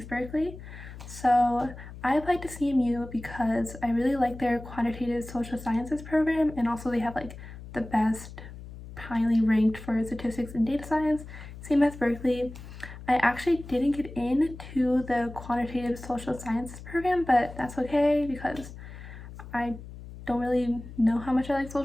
Berkeley. So I applied to CMU because I really like their quantitative social sciences program, and also they have like the best highly ranked for statistics and data science, same as Berkeley. I actually didn't get into the quantitative social sciences program, but that's okay because I don't really know how much I like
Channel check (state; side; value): noise; left; hum, 14 dB below the sound